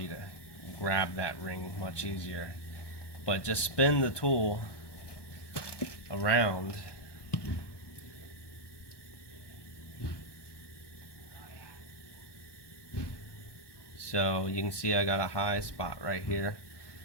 you to grab that ring much easier. But just spin the tool around so you can see I got a high spot right here,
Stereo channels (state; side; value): late; right; 1.2 ms